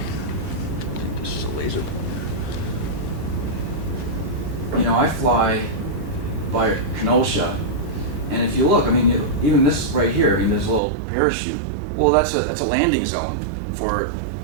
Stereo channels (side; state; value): left; drops out; at 10.8 s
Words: this is a laser pointer. I fly by Kenosha, and if you look, even this right here, this little parachute, well, that's a landing zone for